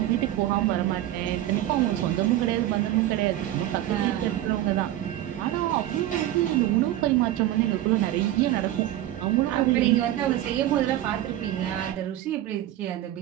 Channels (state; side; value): quieter; left; 13.6 dB